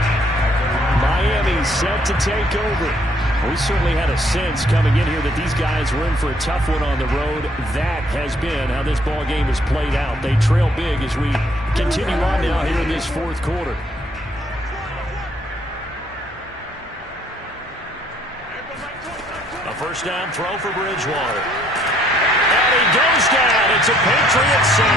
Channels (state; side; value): normal; both; correlation 0.65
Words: Miami set to take over. We certainly had a sense coming in here that these guys were in for a tough one on the road. That has been how this ball game has played out. They trail big as we continue on now here in this 4th quarter. A first down throw for Bridgewater. And he goes down. It's a Patriot